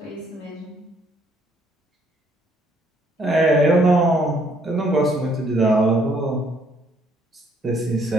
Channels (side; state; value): both; normal; correlation 0.66